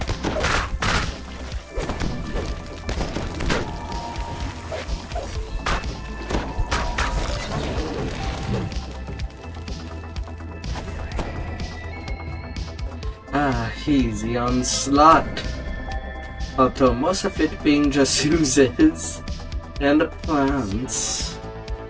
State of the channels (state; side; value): identical; both; correlation 1.00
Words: Ah, easy onslaught. Although most of it being just oozes and plants.